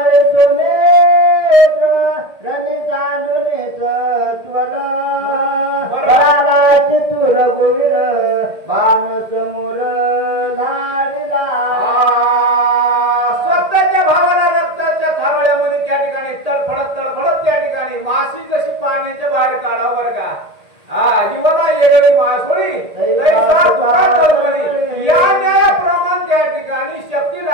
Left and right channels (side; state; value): left; late; 1.8 ms